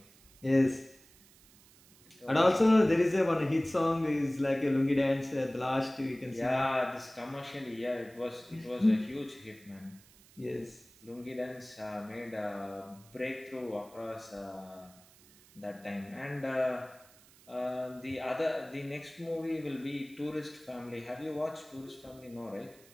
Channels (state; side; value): noise; right; hiss, 25 dB below the sound